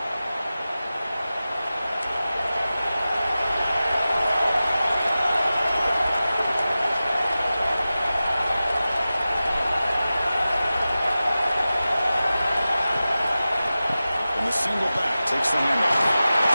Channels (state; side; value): inverted; both; correlation -0.95